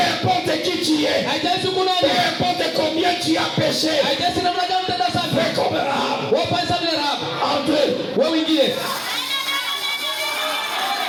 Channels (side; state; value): both; identical; correlation 1.00